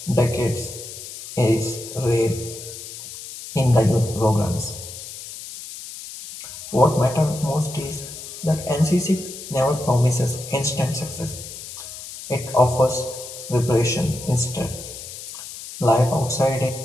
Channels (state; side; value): noise; left; hiss, 12 dB below the sound